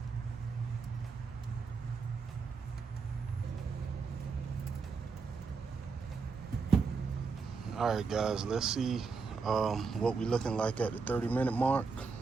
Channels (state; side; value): quieter; left; 4.9 dB